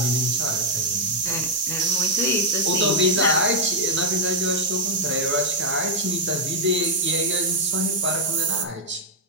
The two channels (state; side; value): normal; both; correlation -0.03